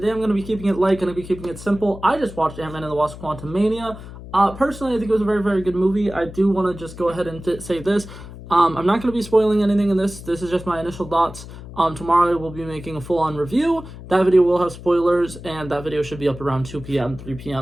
I'm going to be keeping it light, going to be keeping it simple. I just watched Antman and the Wasp: Quantumania. Personally, I think it was a very, very good movie. I do want to just go ahead and say this. I'm not going to be spoiling anything in this. This is just my initial thoughts. Tomorrow we'll be making a full-on review. That video will have spoilers, and that video should be up around 2 p.m., 3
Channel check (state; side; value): noise; left; hum, 14 dB below the sound